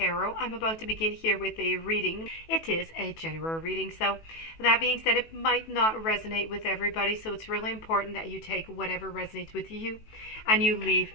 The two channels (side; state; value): right; late; 18 ms